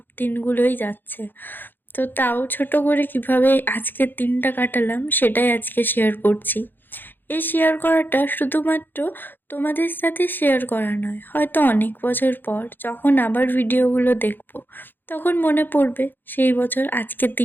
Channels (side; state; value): right; late; 0.094 ms